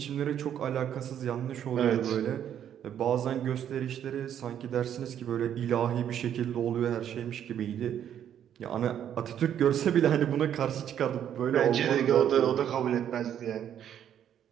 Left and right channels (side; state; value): left; quieter; 9.8 dB